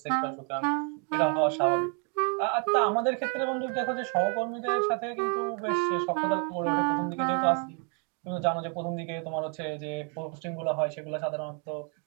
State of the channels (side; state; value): left; quieter; 38.2 dB